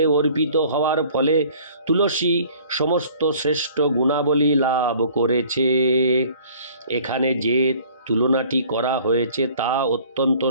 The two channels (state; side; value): inverted; both; correlation -0.52